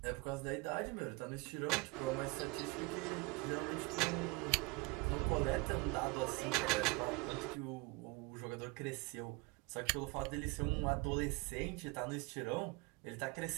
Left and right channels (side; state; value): left; quieter; 25.0 dB